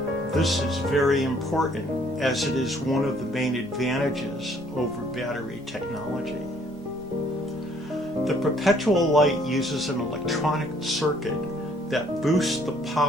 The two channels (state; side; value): noise; right; rumble, 24 dB below the sound